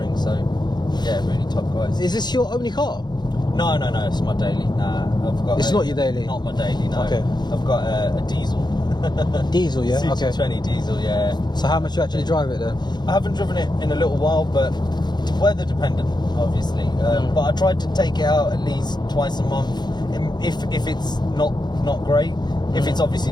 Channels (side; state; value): right; late; 0.21 ms